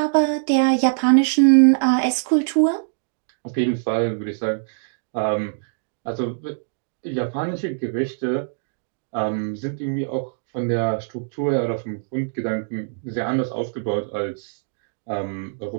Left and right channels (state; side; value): silent; left; digital silence